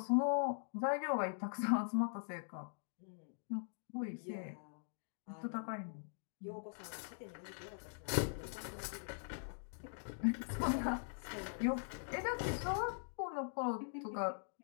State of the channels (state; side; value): silent; right; digital silence